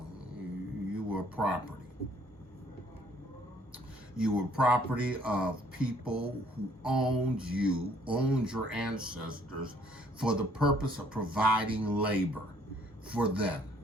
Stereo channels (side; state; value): both; normal; correlation 0.62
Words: were property. You were property of people who owned your ancestors for the purpose of providing labor for them.